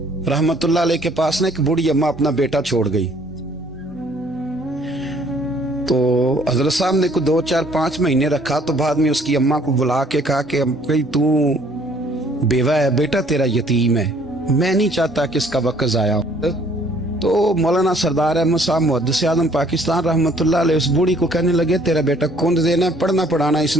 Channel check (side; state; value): both; normal; correlation 0.60